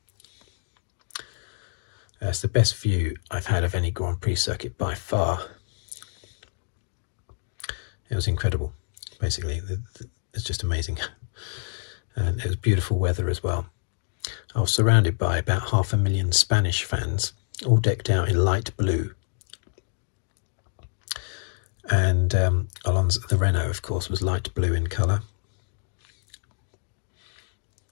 It's the best view I've had of any Grand Prix circuit by far. It was incredible, basically. It's just amazing. And it was beautiful weather as well. I was surrounded by about 500,000 Spanish fans, all decked out in light blue. And Alonso, the Renault, of course, was light blue in colour.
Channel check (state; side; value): silent; right; digital silence